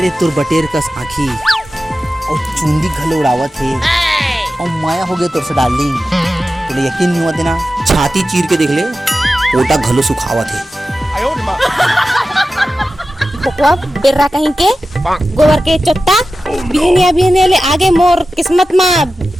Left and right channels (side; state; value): both; normal; correlation 0.93